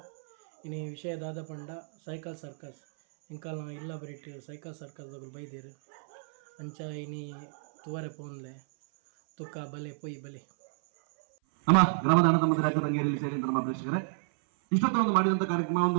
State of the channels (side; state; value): left; silent; 57 dB below the other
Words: ಇನಿ ವಿಷಯ ದಾದ ಪಂಡ ಸೈಕಲ್ ಸರ್ಕಸ್ ಇಂಕಲ್ ಇಲ್ಲ ಬರೀಟ್ ಸೈಕಲ್ ಸರ್ಕಸ್ ಬೈದಿರು ಅಂಚ ಇನಿ ತುವರೆ ಪೋನ್ಲೆ ತುಕ್ಕ ಬಲೆ ಪೊಯ್ ಬಲೆ ನಮ್ಮ ಗ್ರಾಮದ ಅಣ್ಣ ತಮ್ಮ ರಾಜ್ಯ ತಂಗೇರಿಯಲ್ಲಿ ಸೇರಿದಂತ ನಮ್ಮ ಪ್ರೇಕ್ಷಕರೇ, ಇಷ್ಟೊತ್ತು ಒಂದು ಮಾಡಿದಂಥ ಕಾರ್ಯಕ್ರಮ